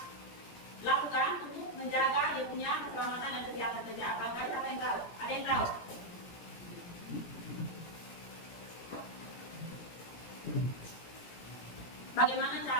lakukan untuk menjaga dia punya keselamatan dan kesehatan kerja? Bangkai siapa yang tahu? Ada yang tahu? Bagaimana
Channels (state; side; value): late; right; 17 ms